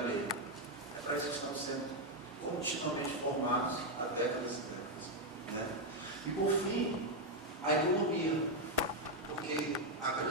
alheia. É para isso que estamos sendo continuamente formados há décadas e décadas. Né? E por fim, a economia, porque a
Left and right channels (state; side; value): normal; both; correlation 0.02